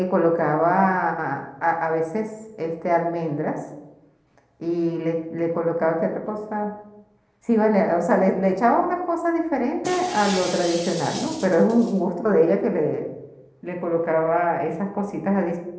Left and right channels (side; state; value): both; identical; correlation 1.00